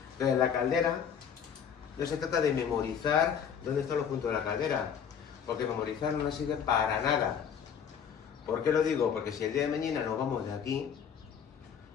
Entonces la caldera, no se trata de memorizar dónde están los puntos de la caldera, porque memorizar no nos sirve para nada. ¿Por qué lo digo? Porque si el día de mañana nos vamos de aquí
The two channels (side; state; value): right; quieter; 7.7 dB